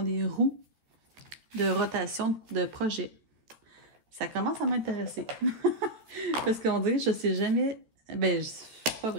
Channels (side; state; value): left; late; 13 ms